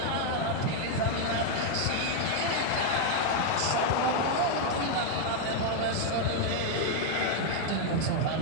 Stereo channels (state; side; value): different; both; correlation 0.00